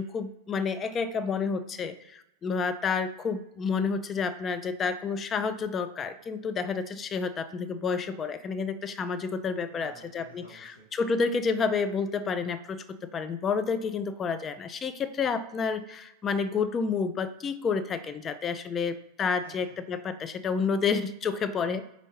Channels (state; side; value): quieter; right; 4.9 dB